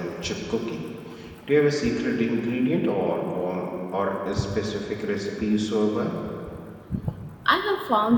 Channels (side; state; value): both; identical; correlation 1.00